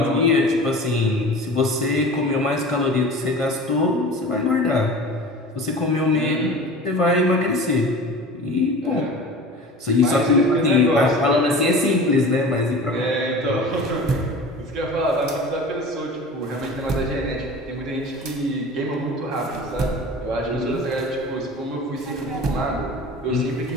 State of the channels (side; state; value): both; normal; correlation 0.37